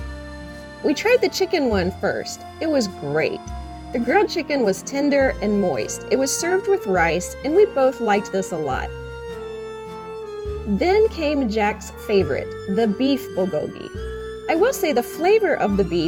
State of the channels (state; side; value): identical; both; correlation 1.00